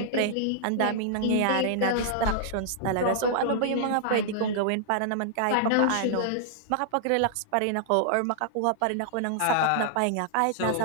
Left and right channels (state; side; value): different; both; correlation -0.01